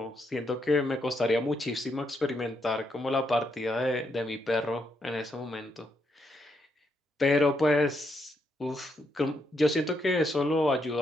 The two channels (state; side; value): normal; both; correlation 0.78